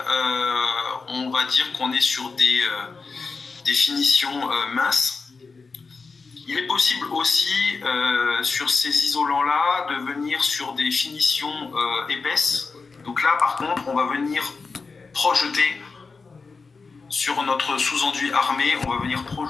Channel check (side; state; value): right; quieter; 4.5 dB